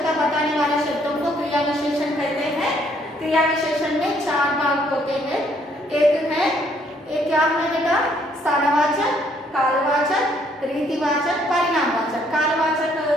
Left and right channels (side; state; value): both; normal; correlation 0.66